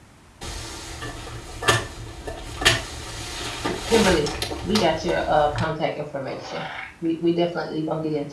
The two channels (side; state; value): both; identical; correlation 1.00